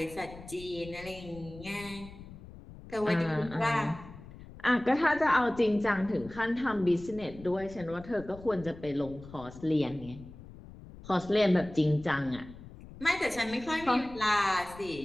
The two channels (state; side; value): noise; left; rumble, 17 dB below the sound